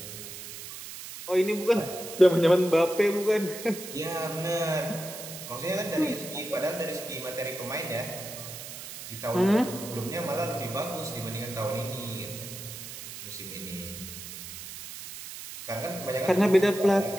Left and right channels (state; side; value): noise; right; hiss, 11 dB below the sound